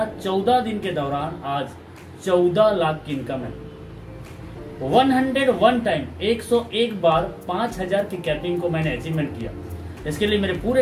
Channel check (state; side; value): identical; both; correlation 1.00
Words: 14 दिन के दौरान आज 14 लाख की इनकम है। 101 टाइम 101 बार 5000 की कैपिंग को मैंने अचीवमेंट किया। इसके लिए मेरे